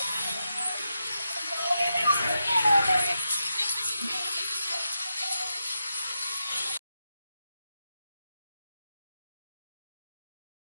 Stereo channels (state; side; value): inverted; both; correlation -0.86